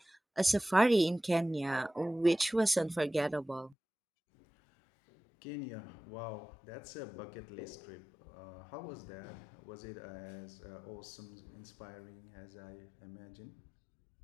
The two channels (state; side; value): drops out; right; at 3.8 s